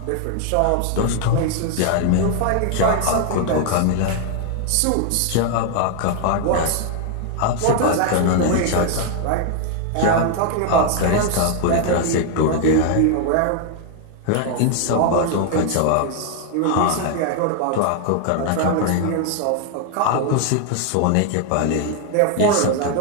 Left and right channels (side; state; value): both; different; correlation 0.00